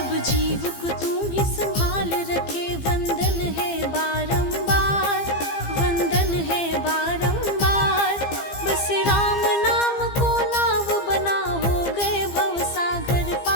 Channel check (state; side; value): late; right; 15 ms